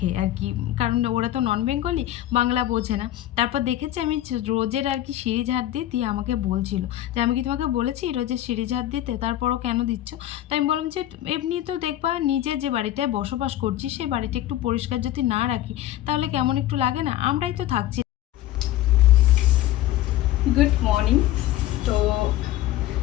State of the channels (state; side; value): quieter; right; 13.6 dB